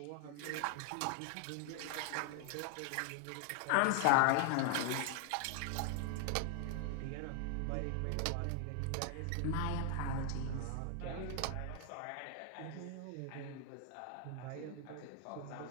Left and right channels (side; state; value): both; different; correlation 0.00